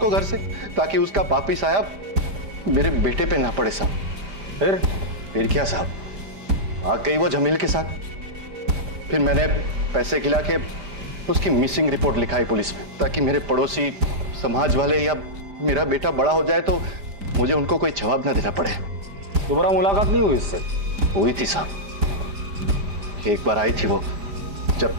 घर से ताकि उसका पापी साहब मेरे बेटे पे ना पड़े साहब। फिर क्या साहब, भाग गई वो जमील के साथ। फिर मैंने पैसे खिला के उसकी मिसिंग रिपोर्ट लिखाई पुलिस में, ताकि मेरे पड़ोसी, समाज वाले या मेरा बेटा बड़ा हो जाए तो मुझे उनको कोई जवाब ना देना पड़े। दोबारा मुलाकात नहीं हुई इससे? हुई थी साहब, एक बार आई थी वो जब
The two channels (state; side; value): late; left; 5.0 ms